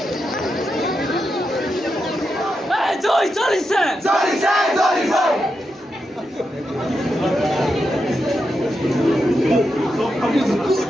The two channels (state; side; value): normal; both; correlation 0.86